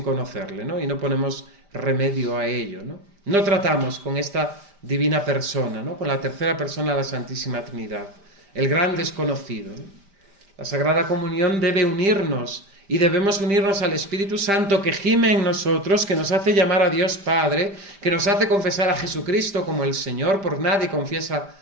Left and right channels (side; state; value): left; late; 5.1 ms